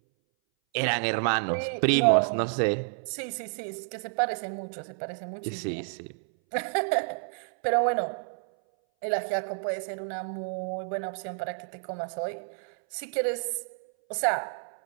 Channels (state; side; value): silent; left; 58 dB below the other